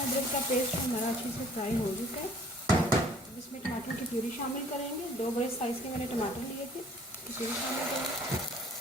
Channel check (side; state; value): both; normal; correlation 0.54